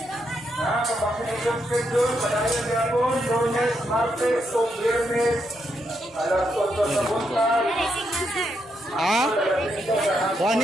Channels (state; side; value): normal; both; correlation 0.80